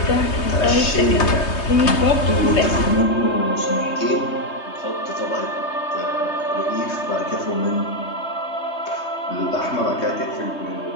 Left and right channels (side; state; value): right; late; 3.2 ms